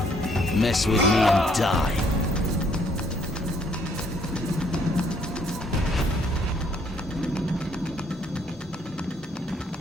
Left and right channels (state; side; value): normal; both; correlation 0.66